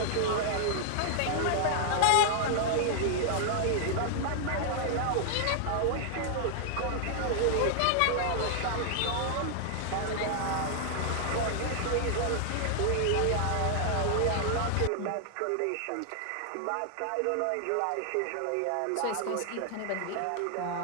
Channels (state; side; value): different; both; correlation 0.00